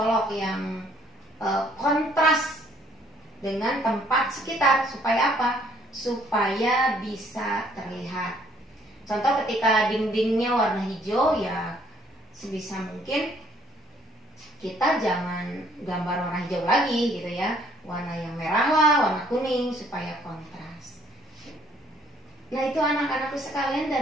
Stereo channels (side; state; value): both; normal; correlation 0.63